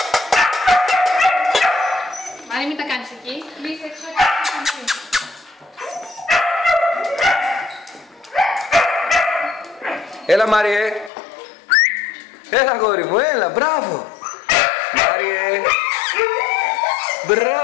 Μάρια, μην τα κάνεις εκεί. Κλείσε έξω. Έλα, Μάριε. Έλα, αγόρι μου, έλα, μπράβο. Μάριε.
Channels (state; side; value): drops out; right; at 11.1 s